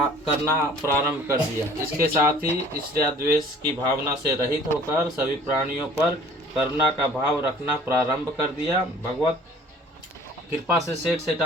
करना प्रारंभ कर दिया। इसके साथ ही ईर्ष्या द्वेष की भावना से रहित होकर सभी प्राणियों पर करुणा का भाव रखना प्रारंभ कर दिया। भगवत कृपा से सेठ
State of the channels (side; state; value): both; normal; correlation 0.51